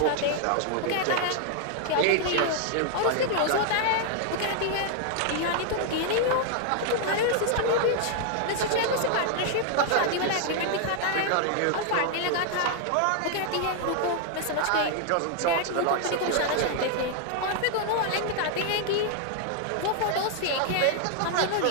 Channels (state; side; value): different; both; correlation 0.00